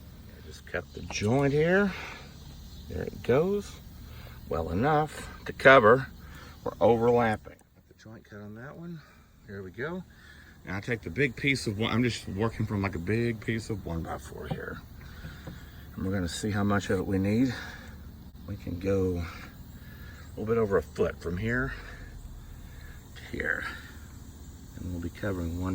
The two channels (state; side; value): identical; both; correlation 1.00